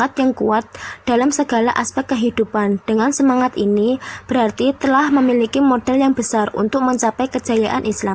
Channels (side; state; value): both; identical; correlation 1.00